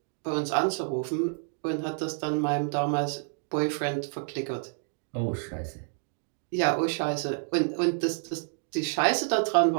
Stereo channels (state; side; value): silent; left; 59 dB below the other